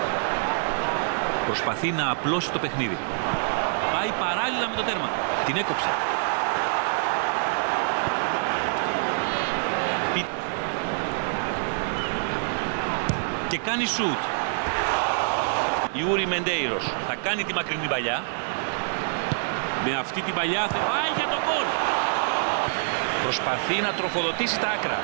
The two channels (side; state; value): left; silent; digital silence